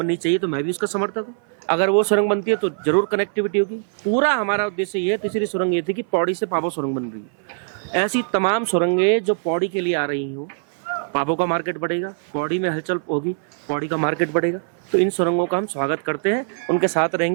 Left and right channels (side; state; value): left; silent; 57 dB below the other